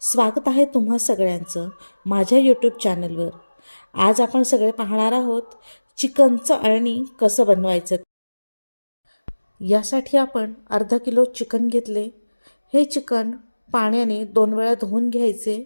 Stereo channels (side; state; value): both; inverted; correlation -1.00